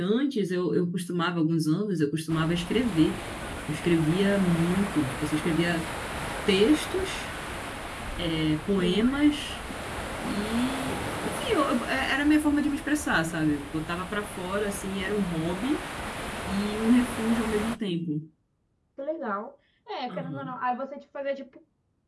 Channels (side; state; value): both; identical; correlation 1.00